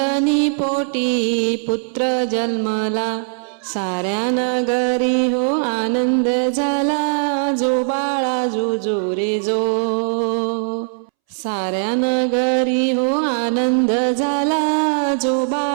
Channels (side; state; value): left; silent; 66 dB below the other